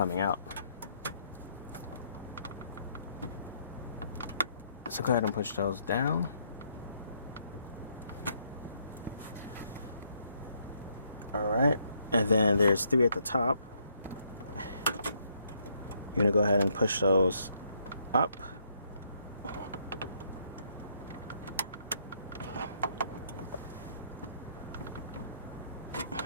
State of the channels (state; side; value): inverted; both; correlation -0.72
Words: out. So go ahead and push those down. Alright, and then there's 3 at the top. You're gonna go ahead and push those up.